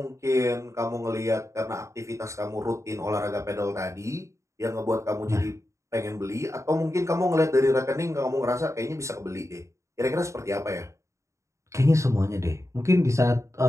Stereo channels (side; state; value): left; late; 0.14 ms